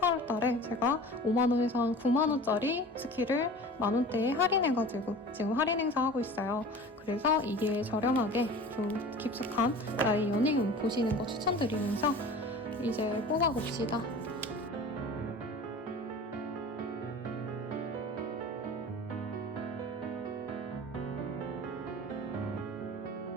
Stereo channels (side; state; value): both; normal; correlation 0.39